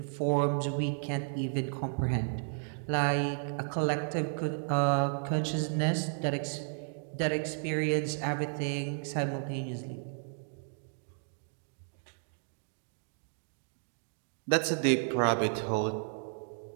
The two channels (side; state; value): left; silent; 56 dB below the other